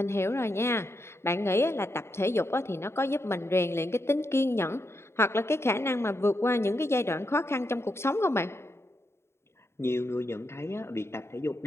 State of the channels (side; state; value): right; late; 0.12 ms